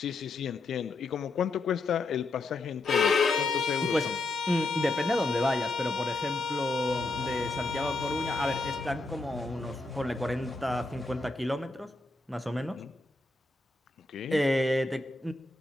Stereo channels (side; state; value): right; quieter; 3.1 dB